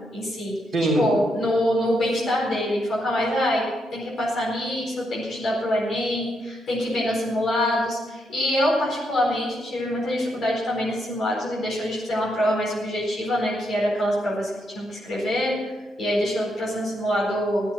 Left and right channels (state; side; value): normal; both; correlation 0.79